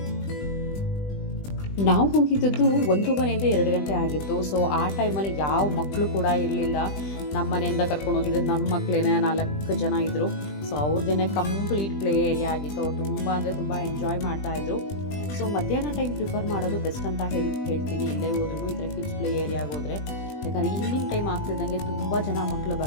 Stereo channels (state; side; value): late; right; 20 ms